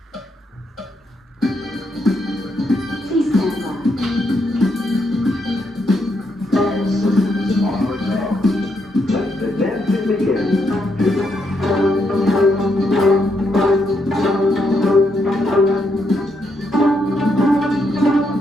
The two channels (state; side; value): normal; both; correlation 0.78